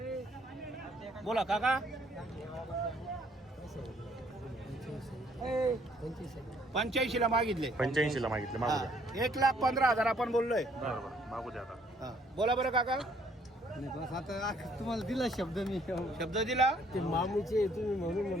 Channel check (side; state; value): both; normal; correlation 0.64